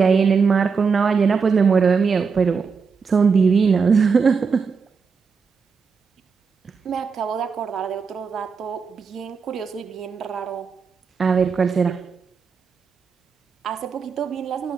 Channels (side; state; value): left; quieter; 5.5 dB